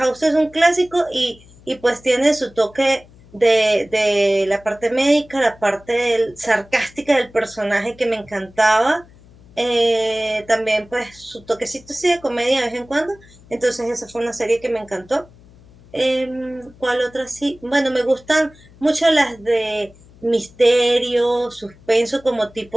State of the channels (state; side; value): noise; left; hum, 25 dB below the sound